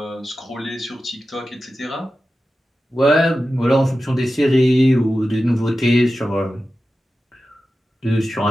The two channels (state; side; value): normal; both; correlation 0.93